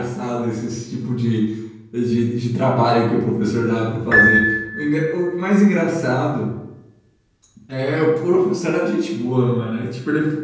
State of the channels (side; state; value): both; identical; correlation 1.00